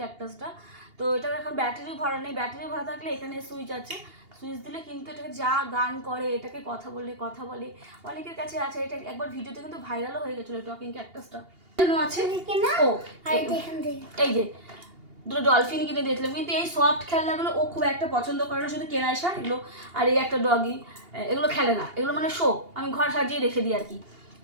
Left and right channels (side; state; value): left; late; 2.8 ms